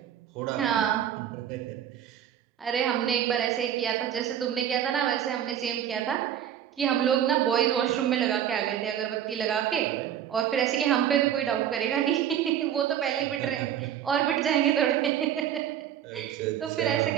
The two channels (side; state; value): left; quieter; 10.1 dB